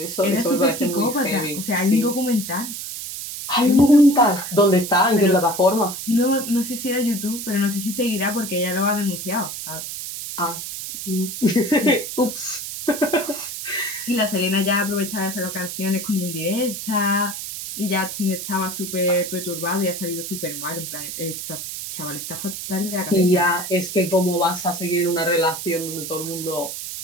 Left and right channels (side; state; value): right; noise; hiss, 7 dB below the sound